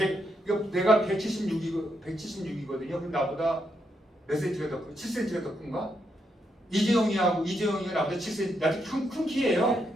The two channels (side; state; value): both; normal; correlation 0.80